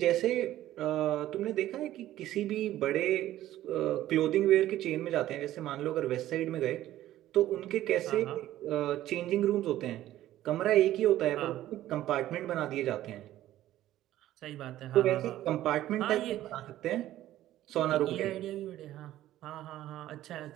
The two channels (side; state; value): left; quieter; 13.9 dB